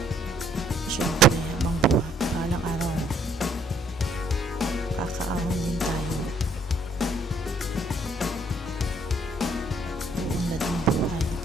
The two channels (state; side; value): normal; both; correlation 0.64